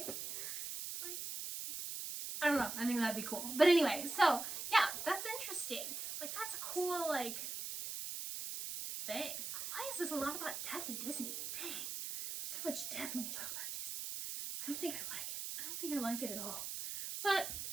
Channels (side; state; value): right; noise; hiss, 5 dB below the sound